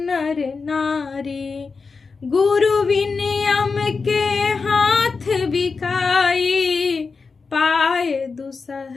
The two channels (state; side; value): quieter; right; 4.7 dB